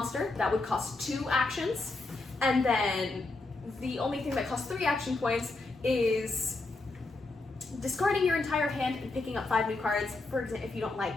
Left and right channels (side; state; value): right; quieter; 3.3 dB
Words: that would cost 2 actions. And then the only thing that costs 3 action points is discarding your entire hand and picking up 5 new cards, for example, if you don't like